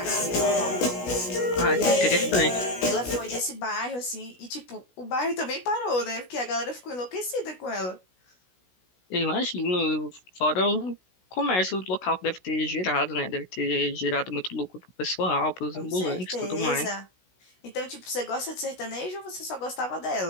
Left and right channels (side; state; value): right; late; 16 ms